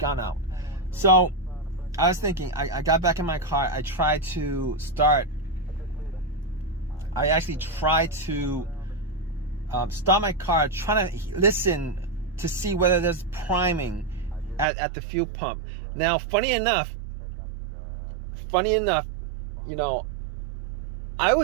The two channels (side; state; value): left; drops out; at 14.7 s